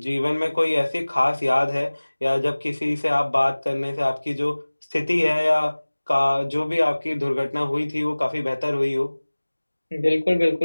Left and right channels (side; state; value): both; inverted; correlation -1.00